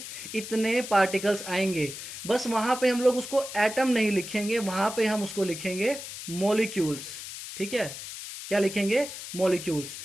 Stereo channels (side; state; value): left; noise; hiss, 10 dB below the sound